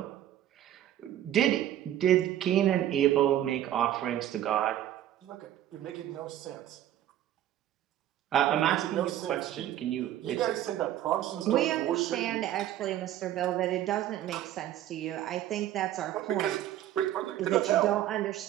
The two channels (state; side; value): quieter; left; 12.2 dB